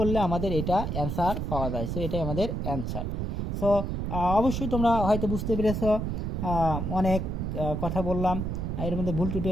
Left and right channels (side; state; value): right; noise; rumble, 2 dB below the sound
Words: আমাদের এটা অ্যান্সার পাওয়া যায়। সো এটাই আমাদের অ্যান্সার। সো অবশ্যই তোমরা হয়তো বুঝতে পেরেছ, অনেক কথা বললাম, এর মধ্যে ভুল ত্রুটি